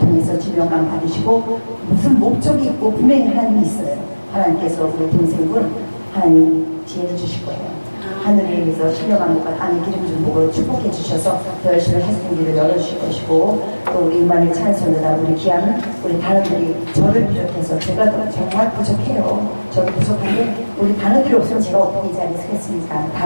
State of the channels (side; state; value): both; inverted; correlation -1.00